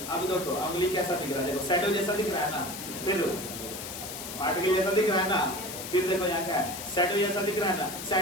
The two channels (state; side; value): noise; left; hiss, 9 dB below the sound